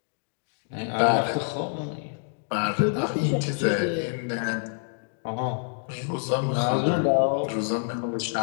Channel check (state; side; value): silent; right; digital silence